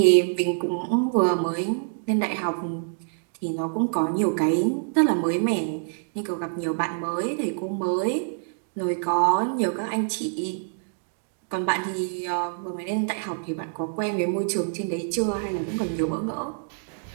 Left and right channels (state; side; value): silent; left; digital silence